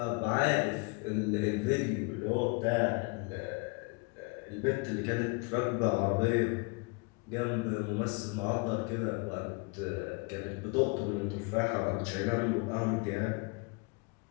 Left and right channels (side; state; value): right; quieter; 29.8 dB